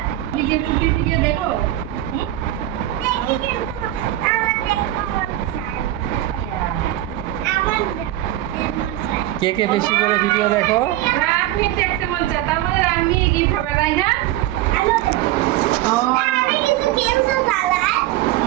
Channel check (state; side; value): quieter; left; 14.6 dB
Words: ফুপির ভিডিও দেখো। কে কে বেশি করে ভিডিও দেখো? আপনি দেখতে মন চায়, তার মানে আমি গিফট হবে, তাই না?